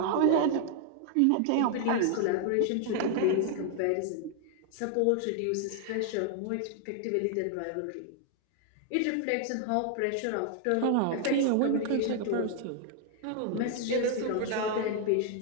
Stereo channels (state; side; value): different; both; correlation 0.00